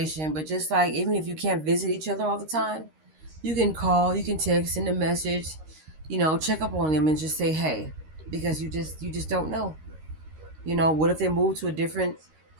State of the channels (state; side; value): late; left; 13 ms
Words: but just like even if you can't visit each other all the time, you can call, you can text, send a message, check up on them and just say, hey, because you just don't know. What if they move to a different